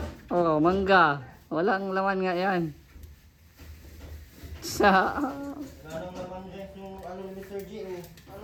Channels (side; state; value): both; identical; correlation 1.00